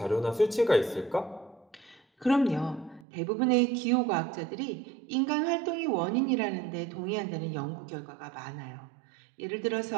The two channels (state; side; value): drops out; left; at 3.1 s